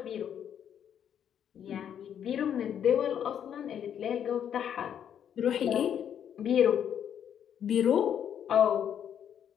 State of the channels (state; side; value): quieter; right; 9.1 dB